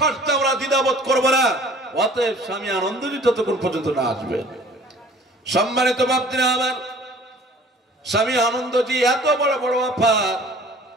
আমরা দ্বিধাবোধ করবো না। অতএব স্বামী আনন্দজি যতক্ষণ পর্যন্ত না আসবে। সম্মানিত বাপজিরা আমার, স্বামী আনন্দজি এত বড় বড় অফার,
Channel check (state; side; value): normal; both; correlation 0.50